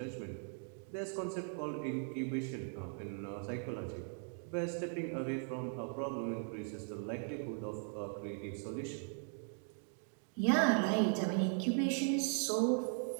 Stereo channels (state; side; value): silent; left; 52 dB below the other